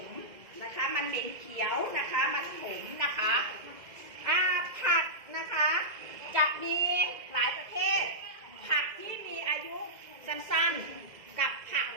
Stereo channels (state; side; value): late; left; 2.0 ms